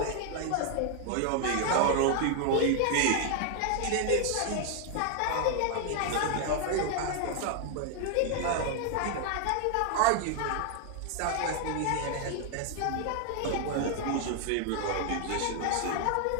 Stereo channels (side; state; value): both; different; correlation 0.00